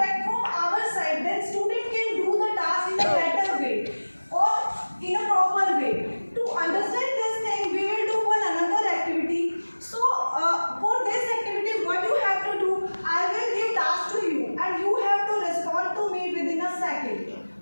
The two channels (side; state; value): both; inverted; correlation -1.00